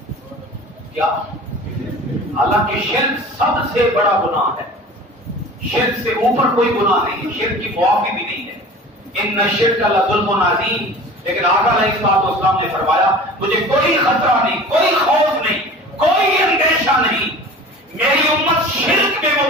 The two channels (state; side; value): normal; both; correlation 0.40